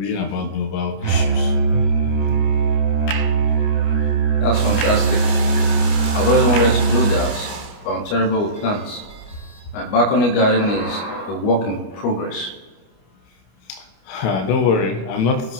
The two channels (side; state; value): right; late; 29 ms